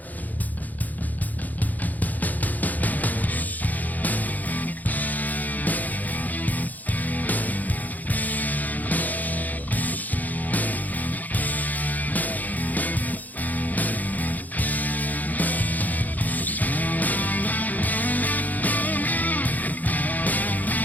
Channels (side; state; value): right; late; 0.081 ms